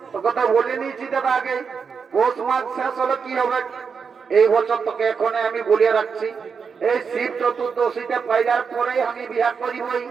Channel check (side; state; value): left; quieter; 5.9 dB